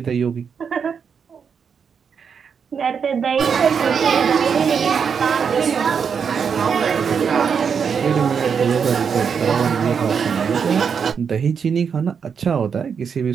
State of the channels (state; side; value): quieter; left; 6.6 dB